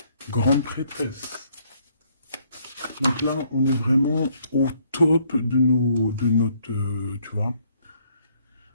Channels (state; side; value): inverted; both; correlation -0.67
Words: grande prêtresse. Donc là, on est vraiment au top de notre, tu vois,